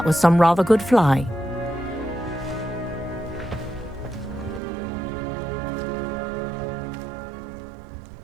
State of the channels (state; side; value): drops out; left; at 4.6 s